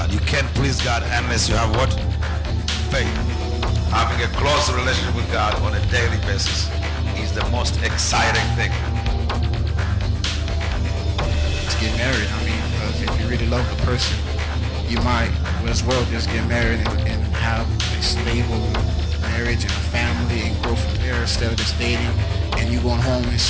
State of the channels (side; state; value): both; identical; correlation 1.00